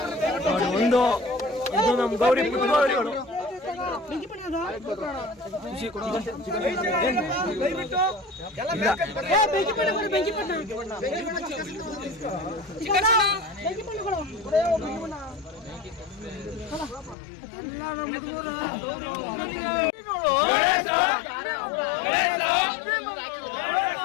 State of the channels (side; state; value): right; drops out; at 17.2 s